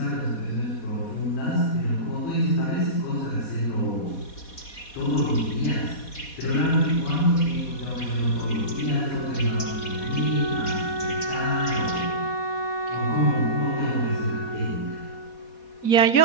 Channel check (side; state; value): right; late; 4.2 ms